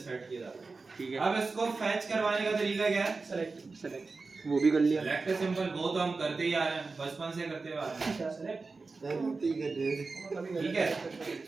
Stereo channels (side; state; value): left; quieter; 4.0 dB